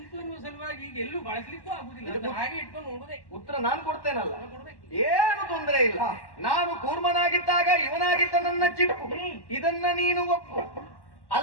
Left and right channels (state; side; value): late; right; 1.1 ms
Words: ಎನ್ನುವ ಸಲುವಾಗಿ ಈಗ ಎಲ್ಲೂ ಬಳಸ್ಲಿಕ್ಕೂ ಆಗುದಿಲ್ಲ. ಅದನ್ನ ಹಾಗೆ ಇಟ್ಕೊಂಡು ನೋಡುದೇ. ಉತ್ತರ ನಾನು ಕೊಡ್ತೇನಲ್ಲ, ಕೊಡ್ಬೇಕು. ಏನು ತೊಂದರೆ ಇಲ್ಲ. ನಾನು ಕೂರ್ಮನಾಗಿದ್ದಾಗ ಇವನಾಗಿದ್ದ ನನ್ನ ಚಿಪ್ಪು, ಇದನ್ನ ನೀನು ಒಪ್ಪು.